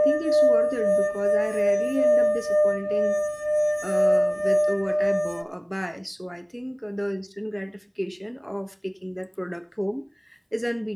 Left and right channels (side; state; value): both; identical; correlation 1.00